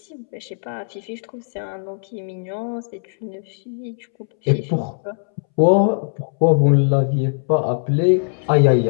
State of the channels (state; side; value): silent; right; 65 dB below the other